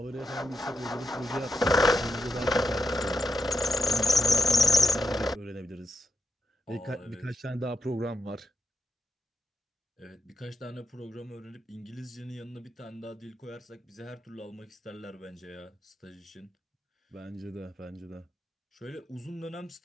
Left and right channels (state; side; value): normal; both; correlation 0.86